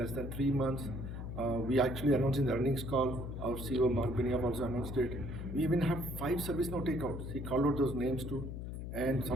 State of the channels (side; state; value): left; noise; hum, 6 dB below the sound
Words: than 3 months. We actually announced in the earnings call, our CEO Mark Benioff also announced it. We even have 5 ServiceNow takeouts. He called out those names too. And